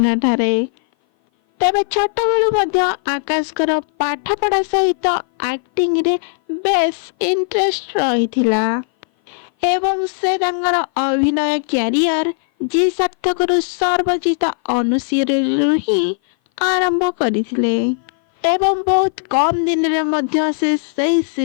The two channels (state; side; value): silent; right; 57 dB below the other